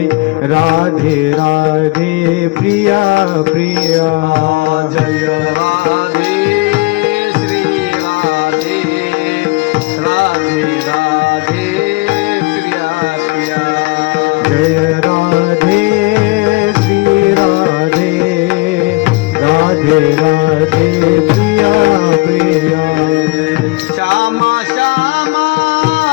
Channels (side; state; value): right; quieter; 23.9 dB